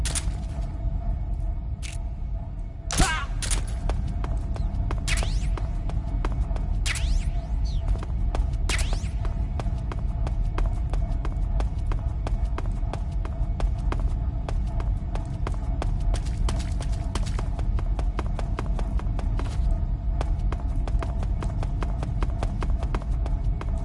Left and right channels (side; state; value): both; identical; correlation 1.00